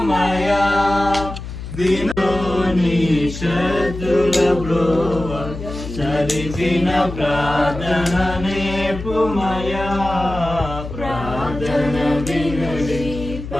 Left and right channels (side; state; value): left; noise; hum, 9 dB below the sound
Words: చదివిన ప్రార్థన నేర్పుమయా ప్రార్థన వినుడి